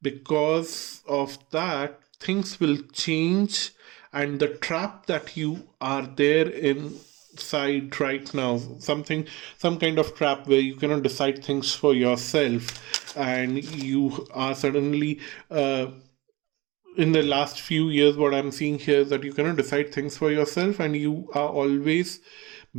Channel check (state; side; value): quieter; left; 21.6 dB